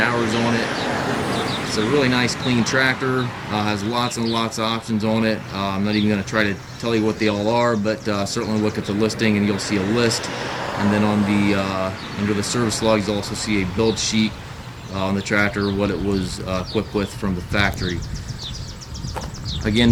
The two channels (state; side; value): identical; both; correlation 1.00